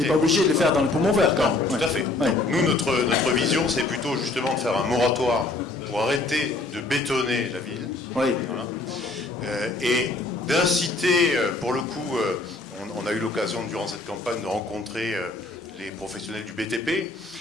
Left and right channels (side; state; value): right; quieter; 3.2 dB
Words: pas obligé de le faire dans le poumon vert, quand même. Tout à fait. Donc, nous, notre vision, c'est plutôt justement de faire un moratoire pour arrêter de bétonner la ville. Oui. Voilà. Et d'inciter, pour le coup, on a eu l'occasion durant cette campagne de rencontrer les professionnels du BTP